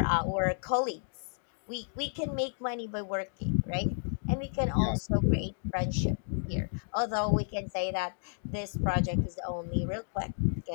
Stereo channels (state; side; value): silent; right; digital silence